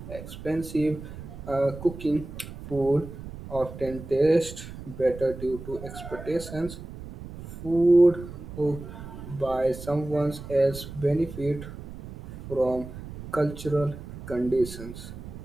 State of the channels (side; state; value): right; noise; rumble, 12 dB below the sound